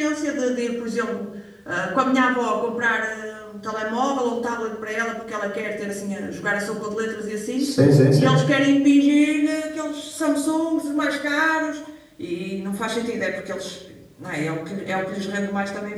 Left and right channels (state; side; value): identical; both; correlation 1.00